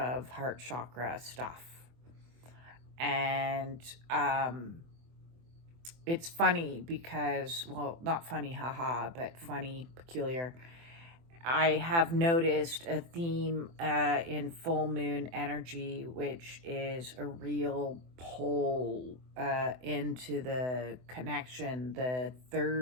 heart chakra stuff. And it's funny because, well, not funny, haha, but funny, peculiar. I have noticed a theme in full moon energy, which is a real pull into the connection, the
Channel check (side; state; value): left; late; 24 ms